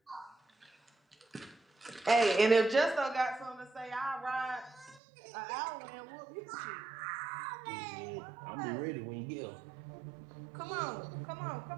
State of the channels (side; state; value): left; drops out; at 5.0 s